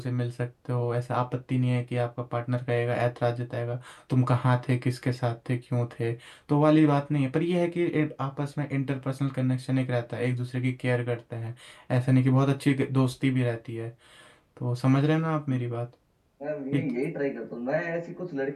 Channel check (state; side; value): identical; both; correlation 1.00